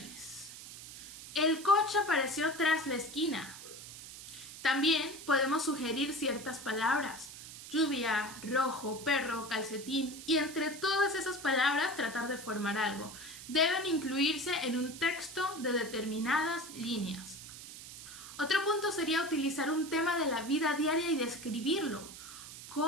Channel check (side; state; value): right; noise; hiss, 13 dB below the sound